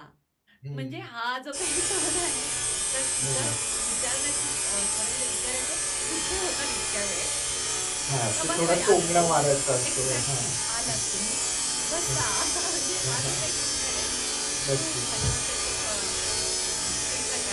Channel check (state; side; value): identical; both; correlation 1.00